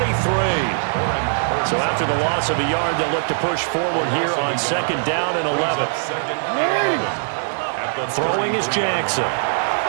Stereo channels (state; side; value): silent; left; digital silence